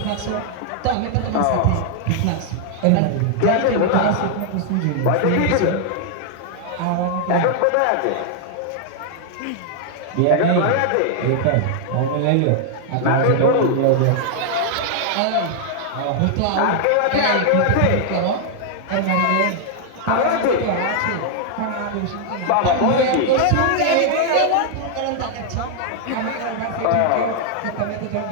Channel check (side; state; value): both; different; correlation 0.00